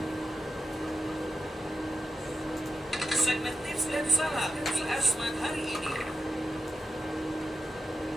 Segmen tips dan saran di Asmat hari ini.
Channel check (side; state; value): both; normal; correlation 0.91